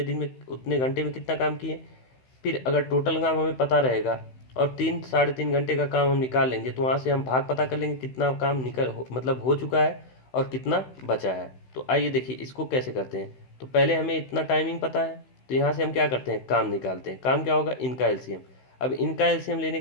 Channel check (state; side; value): late; right; 16 ms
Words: दिन में उतने घंटे में कितना काम किए। फिर अगर टोटल काम हमें पता रहेगा और 3 घंटे का काम हम निकाल लेंगे तो वहाँ से हम भाग पता कर लेंगे कितना काम मतलब हो चुका है और कितना बचा है। तो आइए देखिए इसको कैसे करते हैं। तो पहले हमें इतना टाइमिंग पता है, तो यहाँ से हम क्या करते हैं, काम निकालते हैं। काम क्या होगा, इनका एलसीएम। अब इनका एलसीएम लेने